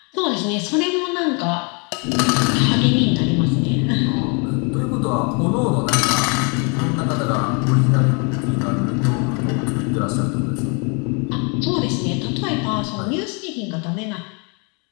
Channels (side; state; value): right; quieter; 34.2 dB